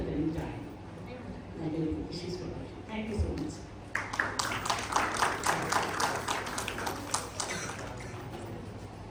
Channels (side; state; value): both; identical; correlation 1.00